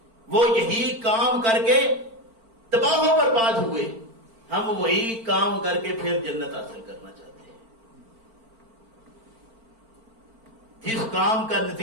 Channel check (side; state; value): left; late; 4.4 ms